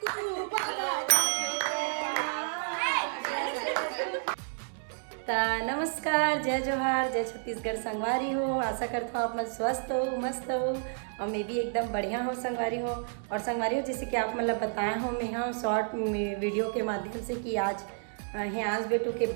नमस्कार, जय जोहार, जय छत्तीसगढ़। संगवारी हो, आशा करता हूँ आप मन स्वस्थ हो, मस्त हो और मैं भी एकदम बढ़िया हो संगवारी हो। और संगवारी हो जैसे कि आप मतलब बताया हो मैं हाँ शॉर्ट वीडियो के माध्यम से कि आज हियांश बेटू के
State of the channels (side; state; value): left; silent; digital silence